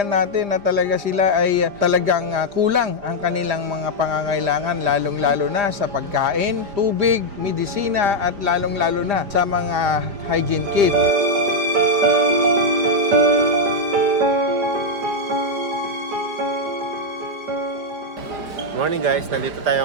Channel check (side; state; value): left; late; 5.0 ms